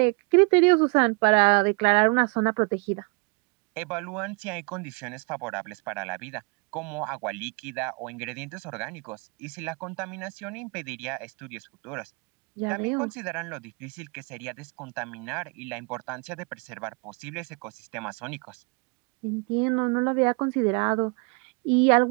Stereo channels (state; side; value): quieter; left; 32.8 dB